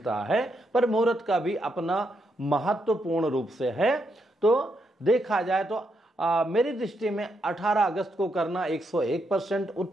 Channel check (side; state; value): both; normal; correlation 0.80